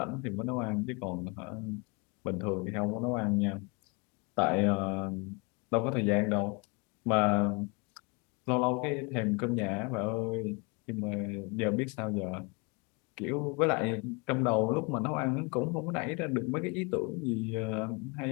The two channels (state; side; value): quieter; right; 30.0 dB